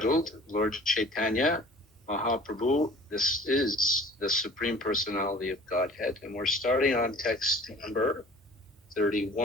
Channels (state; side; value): normal; both; correlation 0.47